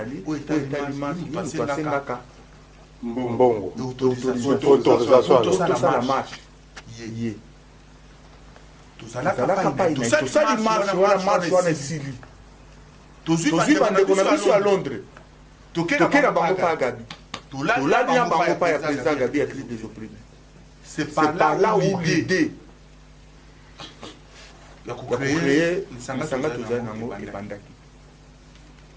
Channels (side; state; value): both; identical; correlation 1.00